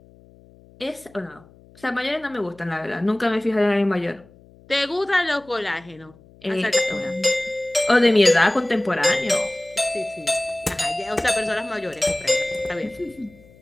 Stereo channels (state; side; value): noise; left; hum, 26 dB below the sound